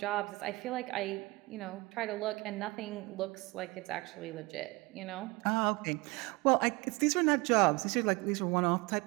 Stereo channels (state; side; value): quieter; left; 23.8 dB